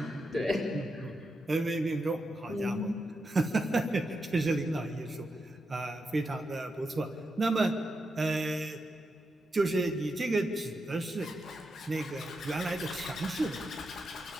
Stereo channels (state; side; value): normal; both; correlation 0.86